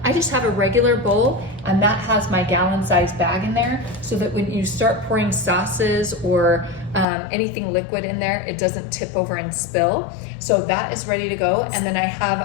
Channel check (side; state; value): right; drops out; at 7.1 s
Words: I just have a regular bowl and that has my gallon-sized bag in there so that when you start pouring sauces or anything liquid in there, it doesn't tip over and spill. So that is ready to go. And then I have